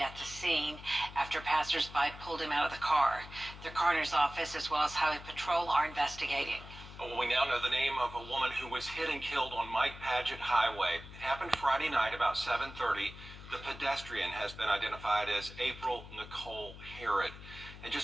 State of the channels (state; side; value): noise; left; hum, 15 dB below the sound